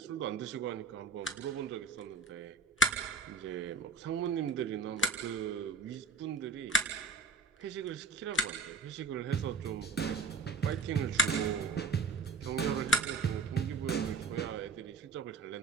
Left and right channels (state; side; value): quieter; left; 4.2 dB